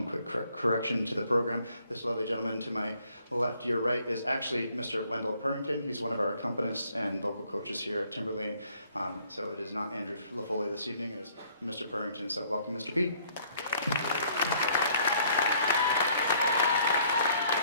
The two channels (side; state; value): both; inverted; correlation -0.63